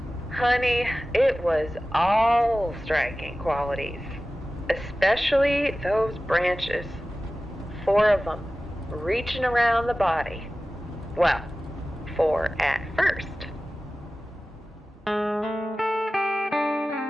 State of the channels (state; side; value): normal; both; correlation 0.96